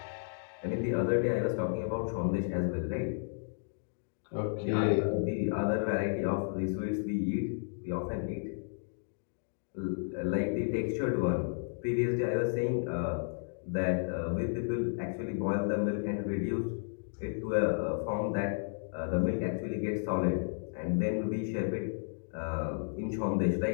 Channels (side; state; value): right; silent; digital silence